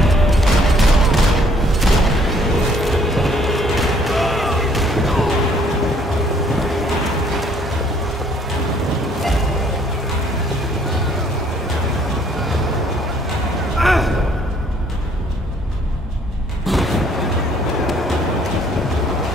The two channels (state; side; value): normal; both; correlation 0.62